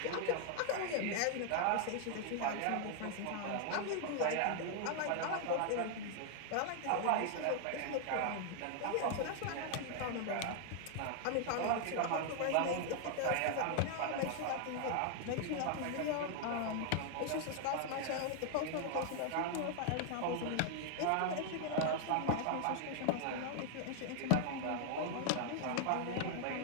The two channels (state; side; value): different; both; correlation 0.00